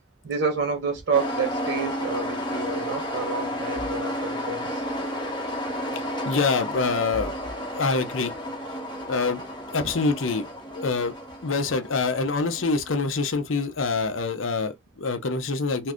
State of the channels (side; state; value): both; normal; correlation 0.06